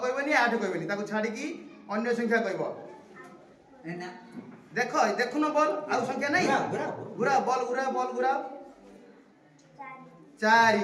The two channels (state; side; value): identical; both; correlation 1.00